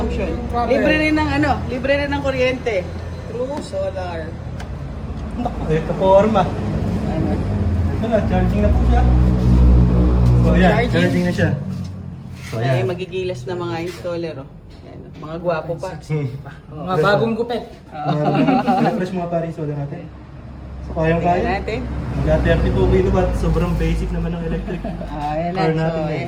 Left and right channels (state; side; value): identical; both; correlation 1.00